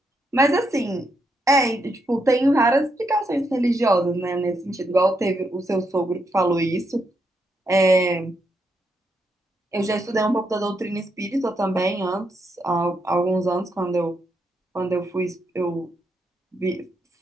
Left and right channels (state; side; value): normal; both; correlation 0.80